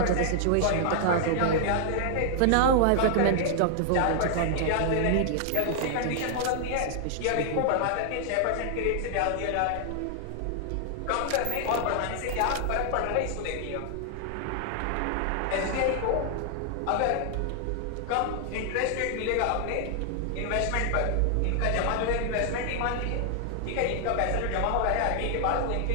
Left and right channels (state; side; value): different; both; correlation 0.00